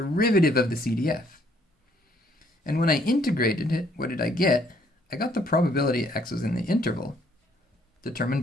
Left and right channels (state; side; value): normal; both; correlation 0.66